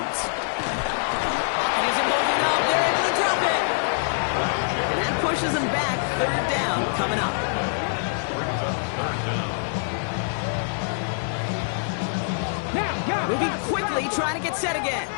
Isn't moving up. They're able to drop it. And that pushes them back. Third down coming up. Moving quickly, trying to get set again.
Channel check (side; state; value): right; silent; digital silence